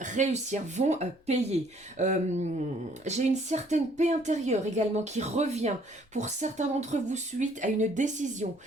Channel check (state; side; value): normal; both; correlation 0.62